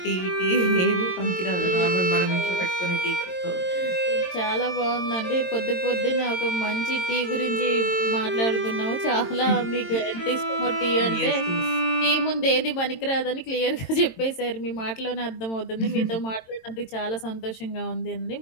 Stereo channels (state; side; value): late; right; 22 ms